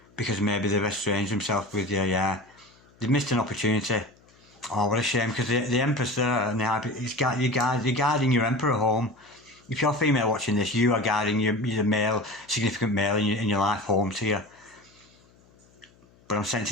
because maybe they've estranged themselves with you. Yeah, they've missed an opportunity. Oh, what a shame, because the Empress there, and you're guiding your Emperor home. If you're female watching this, you are guiding your male, significant male in your life home to you. But I'm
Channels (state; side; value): noise; left; hum, 30 dB below the sound